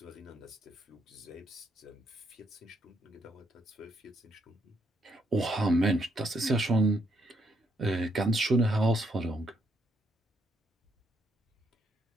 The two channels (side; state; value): both; normal; correlation 0.74